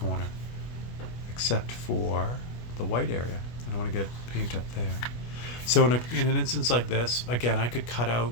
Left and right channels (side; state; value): right; late; 24 ms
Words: except for the white area. I don't want to get paint up there. So in an instance like this, again, I could cut out,